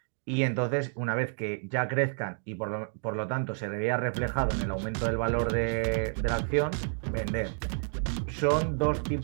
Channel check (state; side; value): silent; left; 58 dB below the other